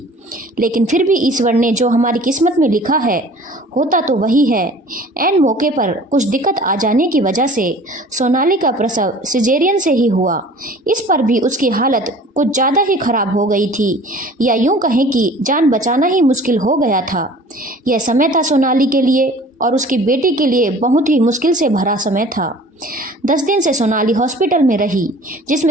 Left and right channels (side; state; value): both; normal; correlation 0.47